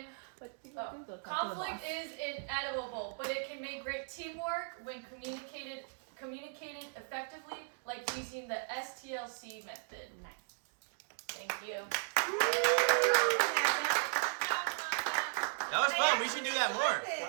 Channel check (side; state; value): left; silent; digital silence